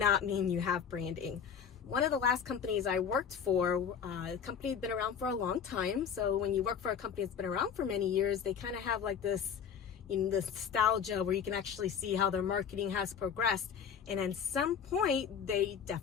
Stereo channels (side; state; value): right; quieter; 7.5 dB